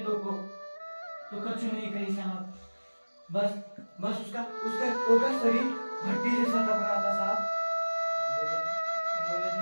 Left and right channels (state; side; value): inverted; both; correlation -1.00